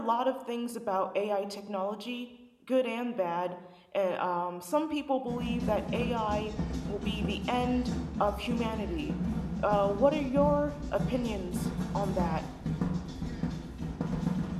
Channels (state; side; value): identical; both; correlation 1.00